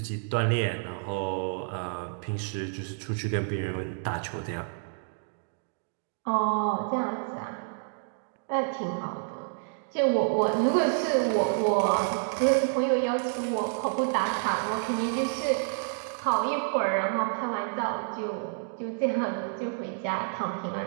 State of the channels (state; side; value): silent; left; digital silence